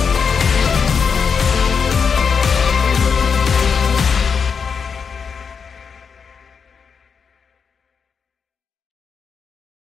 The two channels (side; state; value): right; quieter; 6.1 dB